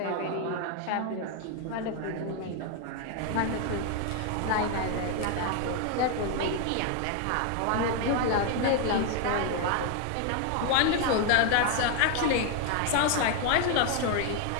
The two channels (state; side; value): different; both; correlation 0.01